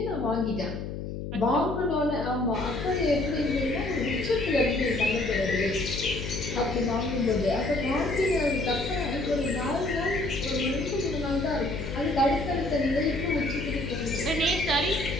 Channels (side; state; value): left; noise; hum, 6 dB below the sound